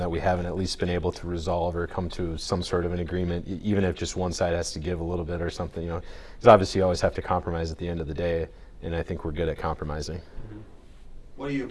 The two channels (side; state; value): both; identical; correlation 1.00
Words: we haven't at least been able to resolve or come to some sort of an agreement, even if just one side has to give a little bit or something, because obviously you always have to compromise at the end of the day, and I think we're good at compromising. Mm-hmm. What do you